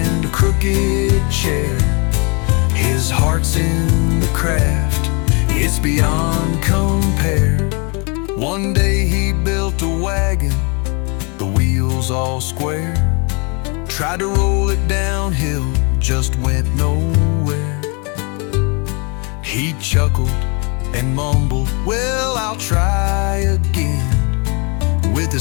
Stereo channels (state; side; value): quieter; right; 32.9 dB